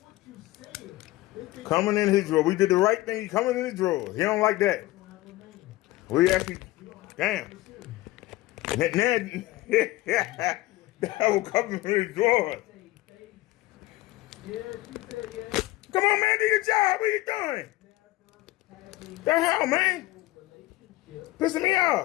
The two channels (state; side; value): quieter; right; 18.3 dB